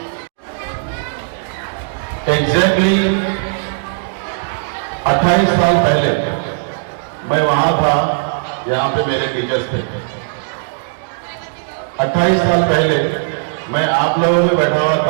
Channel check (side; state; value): left; silent; digital silence